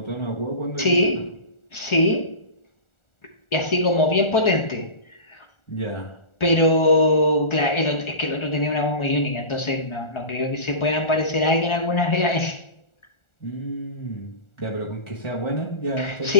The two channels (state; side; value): late; right; 1.4 ms